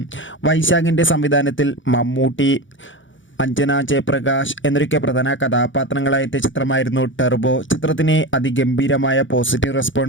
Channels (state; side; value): late; right; 0.56 ms